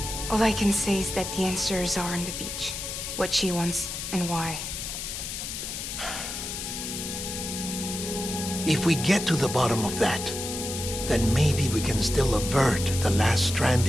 All I can say is that the answers are on the beach. What she wants and why. If we get to the bottom of that, then maybe we can still avert the last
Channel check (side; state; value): left; noise; hiss, 6 dB below the sound